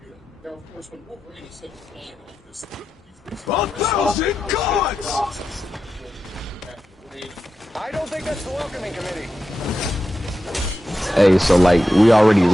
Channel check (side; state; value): both; normal; correlation 0.90